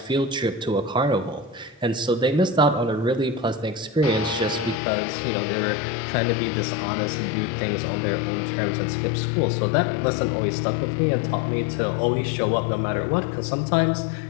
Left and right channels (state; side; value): drops out; right; at 4.8 s